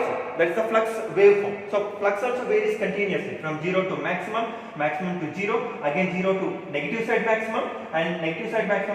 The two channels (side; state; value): both; identical; correlation 1.00